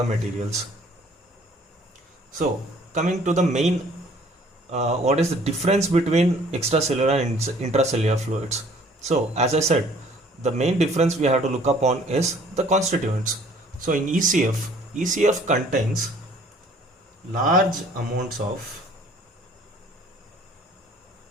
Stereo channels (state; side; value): normal; both; correlation 0.55